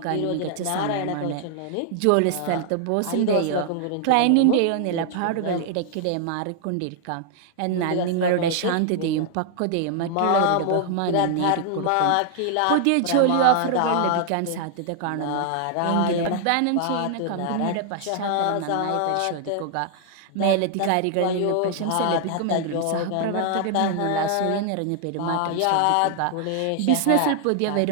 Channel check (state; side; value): different; both; correlation 0.00